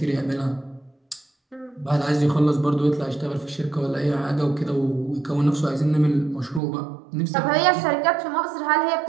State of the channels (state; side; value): drops out; left; at 6.6 s